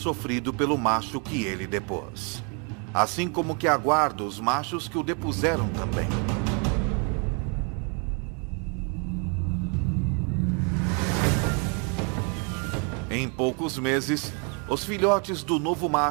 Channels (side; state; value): left; quieter; 36.3 dB